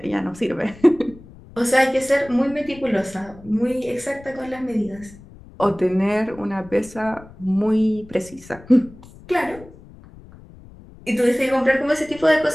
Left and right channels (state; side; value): noise; left; rumble, 20 dB below the sound